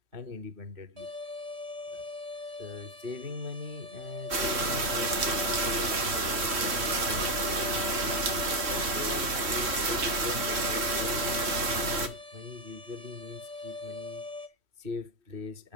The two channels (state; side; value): late; left; 3.1 ms